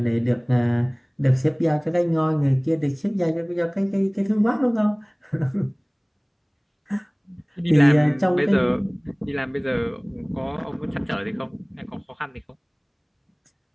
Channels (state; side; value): identical; both; correlation 1.00